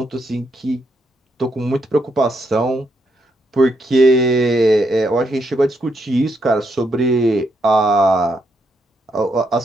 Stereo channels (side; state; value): both; normal; correlation 0.78